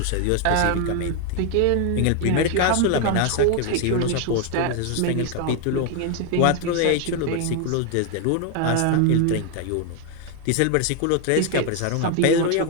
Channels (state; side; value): different; both; correlation 0.01